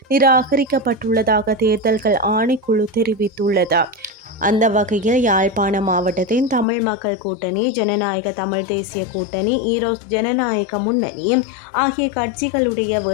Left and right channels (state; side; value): drops out; right; at 6.7 s